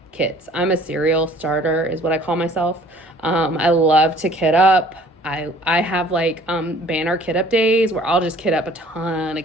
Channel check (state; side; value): normal; both; correlation 0.53